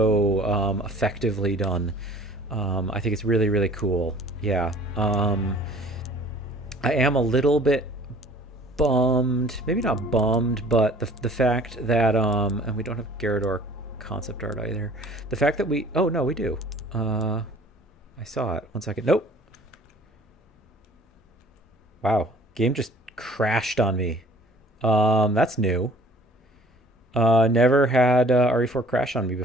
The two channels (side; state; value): both; normal; correlation 0.51